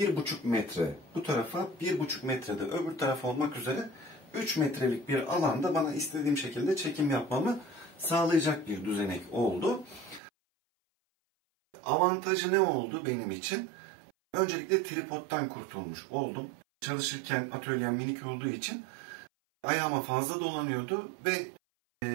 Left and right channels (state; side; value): drops out; left; at 10.2 s